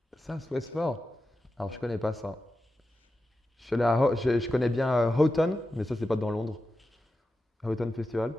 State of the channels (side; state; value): both; normal; correlation 0.91